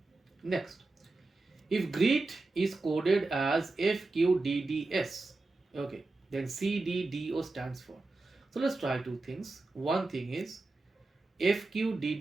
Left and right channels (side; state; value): left; quieter; 3.3 dB